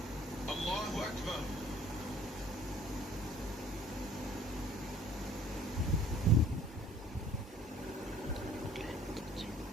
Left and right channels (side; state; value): both; normal; correlation 0.53